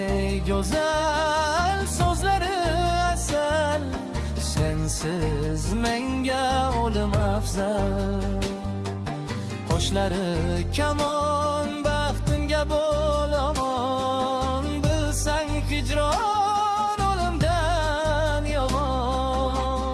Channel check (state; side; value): identical; both; correlation 1.00